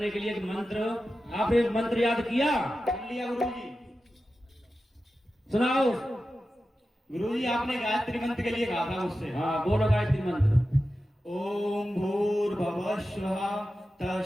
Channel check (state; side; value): normal; both; correlation 0.93